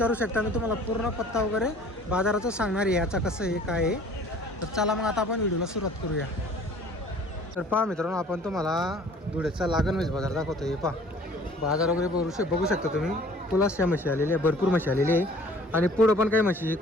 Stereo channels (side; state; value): both; normal; correlation 0.51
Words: शकता. मी तुम्हाला पूर्ण पत्ता वगैरे बाजाराचं सांगणार आहे याचा कसं आहे काय आहे. तर चला मग आता आपण व्हिडिओला सुरुवात करूया. तर पहा मित्रांनो, आपण तुम्हाला धुळेचा लागण म्हैस बाजार दाखवतो. हे पहा बाजार वगैरे बघू शकता तुम्ही. पुलासच्या म्हशी आलेल्या आहे, भरपूर म्हशी आलेली आहे. आणि पुढं पण काही म्हशी